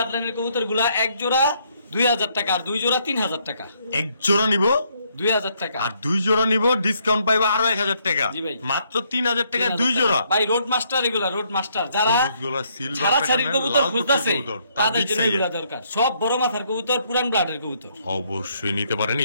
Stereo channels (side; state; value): both; inverted; correlation -0.71